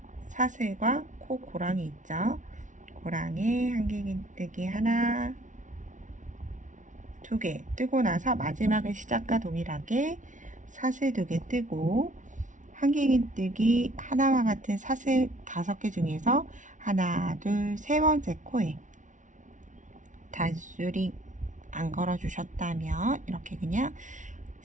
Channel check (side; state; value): left; late; 0.37 ms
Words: 사슬과 코 고랑이 있죠. 고랑에 한길긴뜨기 하나, 2개 뜨고 나서 마지막에 시작과 동일하게 사슬 2개 뜨고 한길긴뜨기 하나와 같은 사슬 5개 중에서 하나, 둘, 세 번째 코에 단수링 안 걸어주셨다면 이렇게 그냥